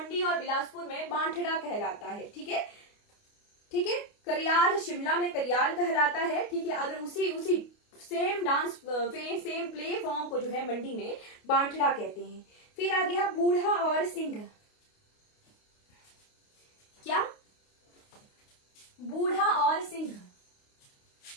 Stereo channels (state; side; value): late; right; 29 ms